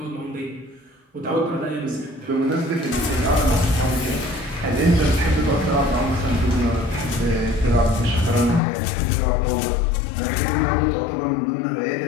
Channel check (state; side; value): drops out; right; at 8.6 s